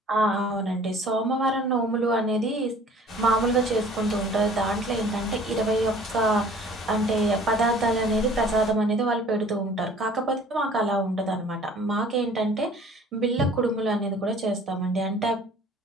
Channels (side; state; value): both; normal; correlation 0.50